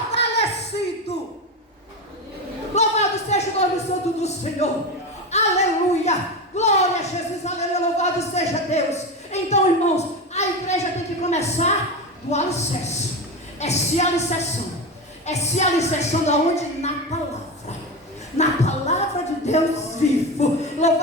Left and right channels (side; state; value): both; normal; correlation 0.20